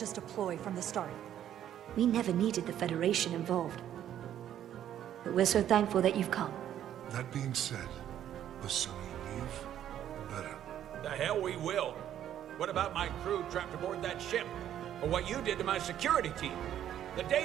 a ploy from the start. We never needed the Federation involved. But we're so thankful that you've come. That being said, the sooner you leave, the better. The hell we will. What about my crew trapped aboard that ship? Or what you did to my security team? The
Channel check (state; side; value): quieter; left; 10.9 dB